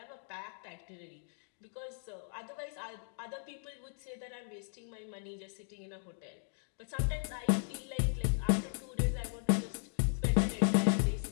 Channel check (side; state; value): right; silent; 53 dB below the other